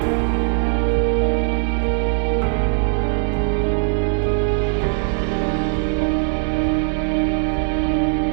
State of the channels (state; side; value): silent; left; 60 dB below the other